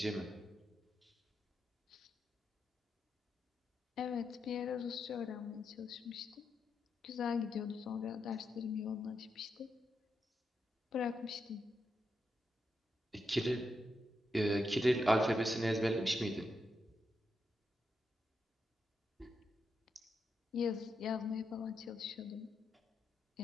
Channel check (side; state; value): both; normal; correlation 0.84